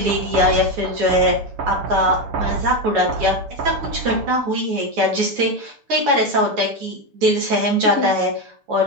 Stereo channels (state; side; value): late; left; 7.0 ms